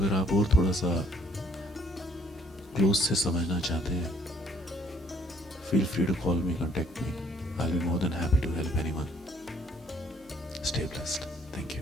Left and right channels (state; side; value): normal; both; correlation 0.62